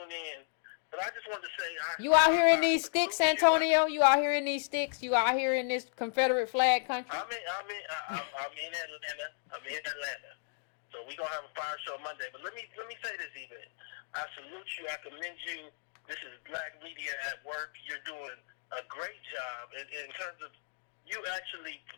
in. But I just wanted to say... You out here in these sticks, Antonio? You out here in these sticks? You out here in this Confederate flag country? I'm in Atlanta. I'm in Atlanta. So we're going to have a fire show Monday. But let me say this, Yvette. I salute you. I commend you. This is Black Media at Work. You're doing a great job in terms of you actually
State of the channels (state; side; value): silent; right; digital silence